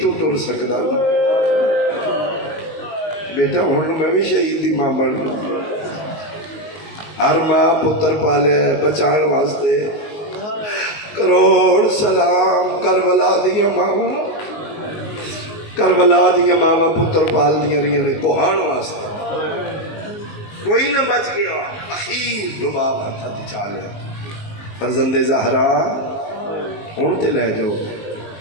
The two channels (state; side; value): late; right; 19 ms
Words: تو ٹر سکتا بیٹا ہوں میں بھی شہید دی ماں بن گئی ہر ماں پتر پالے بچان واسطے کروڑ سلام کربلا دیا ماں کربلا دیا ماں پتر پال دیا رہی نے کوہان واسطے کوئی نہ بچ گیا اخیر رباب ہتھا تے چالیا فرزند زہرا ہوں تو لے جاؤ.